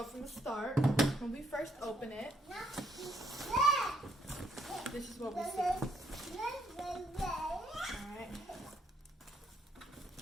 from the start, when we first open it, this is what we see.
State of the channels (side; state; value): both; normal; correlation 0.71